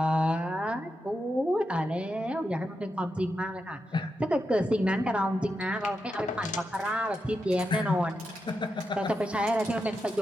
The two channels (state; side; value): normal; both; correlation 0.87